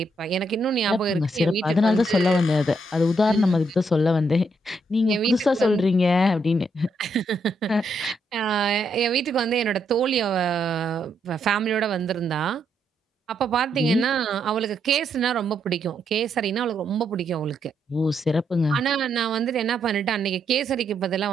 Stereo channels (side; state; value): both; normal; correlation 0.77